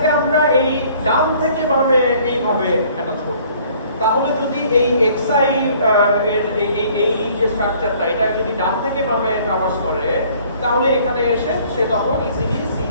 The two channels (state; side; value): inverted; both; correlation -0.57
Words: আমরা এই ডান থেকে বামে এইভাবে অ্যাটাচ করব। তাহলে যদি এই xi এর এই যে স্ট্রাকচারটা এটা যদি ডান থেকে বামে ট্রাভার্স করে তাহলে এখানে এসে সে তখন ইজিলি